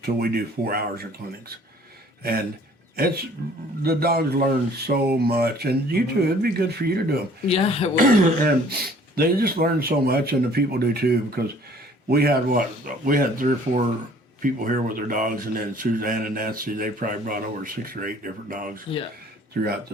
till we do 4 hours of clinics. And the dogs learn so much, and you too, it'd be good for you to do them. Yeah, it was. And they just learn so much, and the people do too, because we had 3 or 4 people here with their dogs, and then Suzanne and Nancy, they probably brought over 6 or 8 different dogs throughout the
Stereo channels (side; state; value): both; normal; correlation 0.54